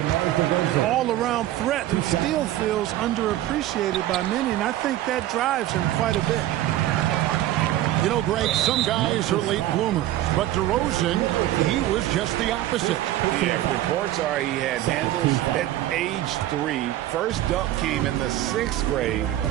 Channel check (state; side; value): quieter; left; 14.0 dB